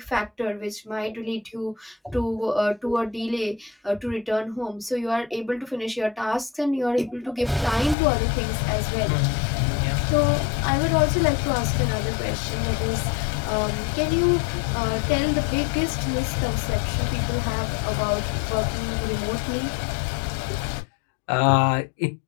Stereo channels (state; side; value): drops out; right; at 8.0 s